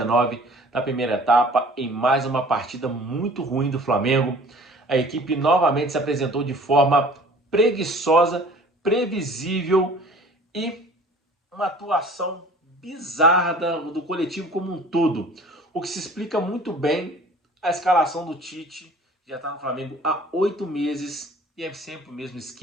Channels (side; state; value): both; normal; correlation 0.48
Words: da primeira etapa, em mais uma partida muito ruim do Flamengo. A equipe novamente se apresentou de forma preguiçosa, previsível e uma atuação bizarra do coletivo como um todo, o que se explica muito bem a escalação do Tite. Já está no Flamengo há 8 meses e é sempre o mesmo